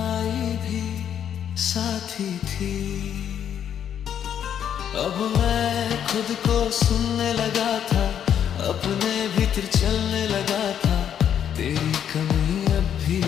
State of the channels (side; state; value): right; quieter; 9.2 dB